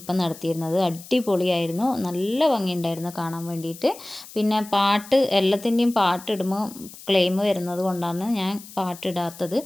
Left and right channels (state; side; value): noise; left; hiss, 17 dB below the sound